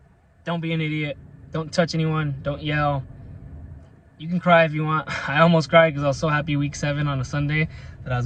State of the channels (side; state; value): both; identical; correlation 1.00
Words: don't be an idiot. Don't touch anyone. Don't yell. You can cry if you want. I almost cried because I was so happy week 7 on a Sunday that I was